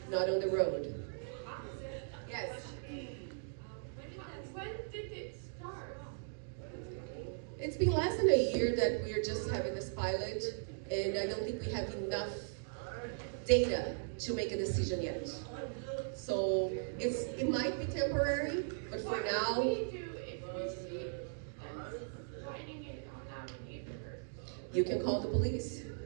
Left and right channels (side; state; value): left; silent; digital silence